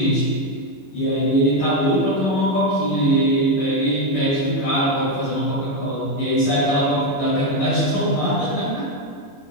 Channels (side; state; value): right; late; 22 ms